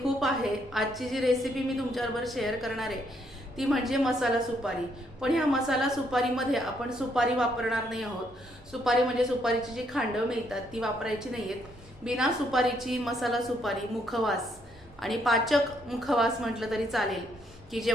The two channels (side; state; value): both; normal; correlation 0.72